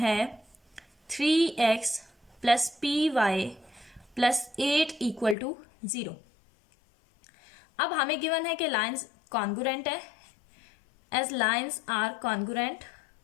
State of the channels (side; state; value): right; drops out; at 5.4 s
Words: 3x plus py plus 8 equal to 0। अब हमें गिवन है कि लाइन्स कॉन्ग्रुएंट है। As lines are congruent,